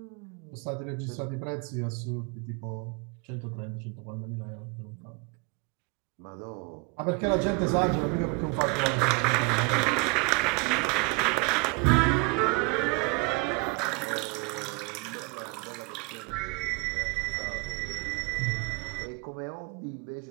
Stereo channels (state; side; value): quieter; left; 29.3 dB